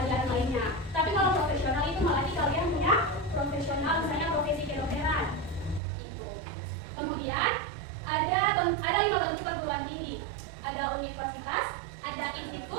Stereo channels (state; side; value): drops out; left; at 5.8 s